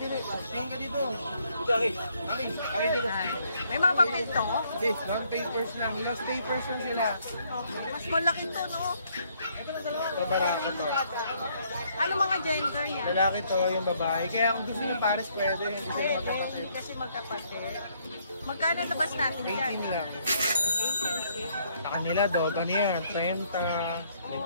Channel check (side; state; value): both; inverted; correlation -0.68